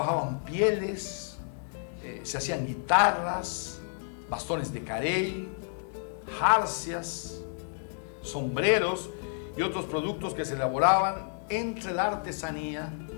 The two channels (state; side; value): silent; right; digital silence